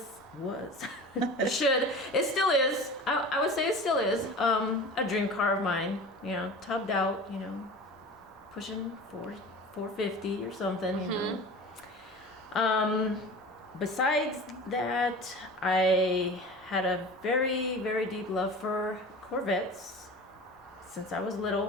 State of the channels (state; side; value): normal; both; correlation 0.36